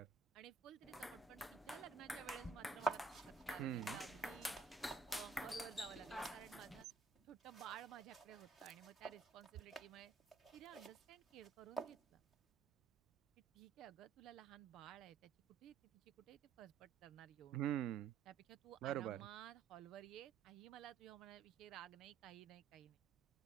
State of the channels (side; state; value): left; quieter; 4.7 dB